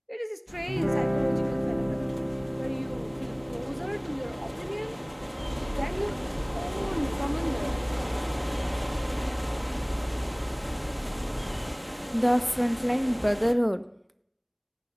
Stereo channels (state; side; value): identical; both; correlation 1.00